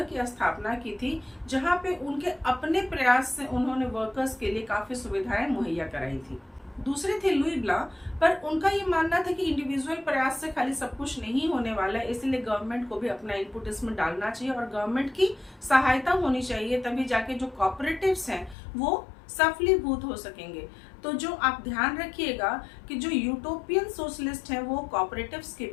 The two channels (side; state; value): right; drops out; at 18.6 s